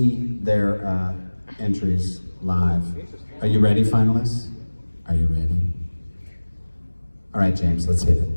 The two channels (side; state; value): both; inverted; correlation -1.00